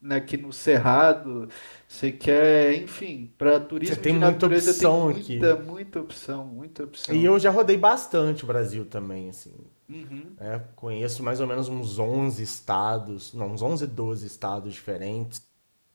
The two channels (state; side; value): inverted; both; correlation -1.00